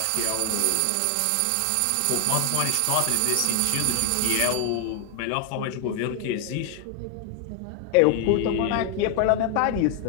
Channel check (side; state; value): both; different; correlation 0.00